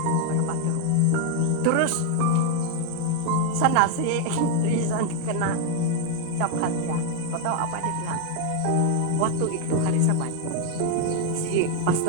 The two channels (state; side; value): different; both; correlation 0.01